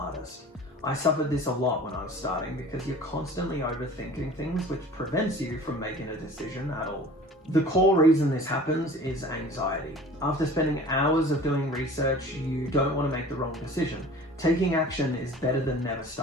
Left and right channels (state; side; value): normal; both; correlation 0.43